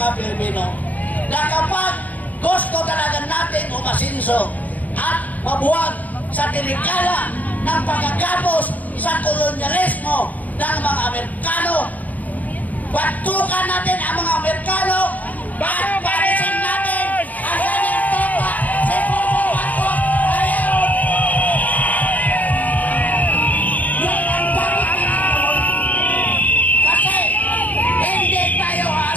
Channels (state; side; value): late; right; 0.077 ms